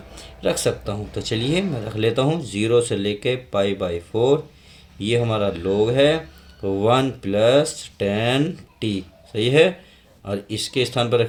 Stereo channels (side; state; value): both; identical; correlation 1.00